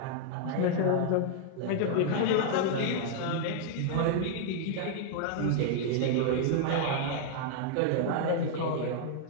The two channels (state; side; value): different; both; correlation -0.01